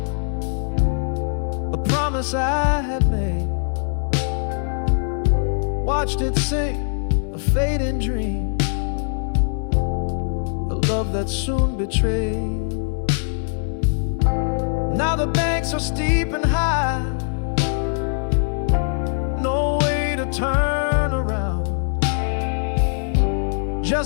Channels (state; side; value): silent; right; 64 dB below the other